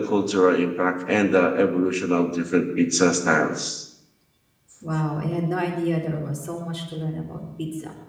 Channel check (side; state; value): both; identical; correlation 1.00